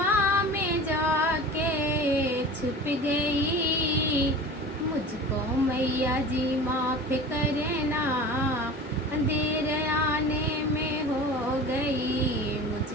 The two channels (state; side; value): normal; both; correlation 0.37